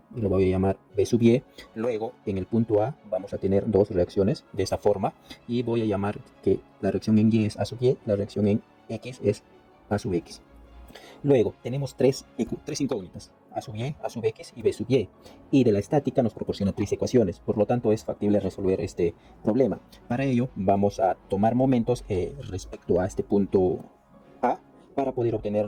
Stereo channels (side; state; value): both; identical; correlation 1.00